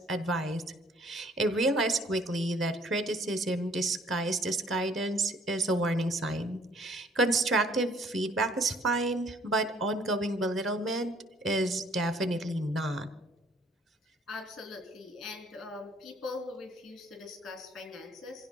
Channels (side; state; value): both; normal; correlation 0.59